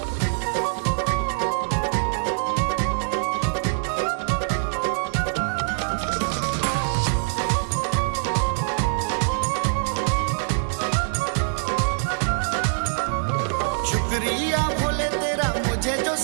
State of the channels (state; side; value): silent; left; 63 dB below the other